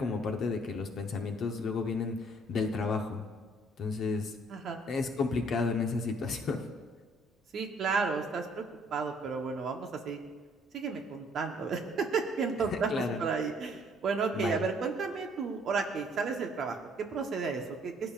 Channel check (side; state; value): both; normal; correlation 0.62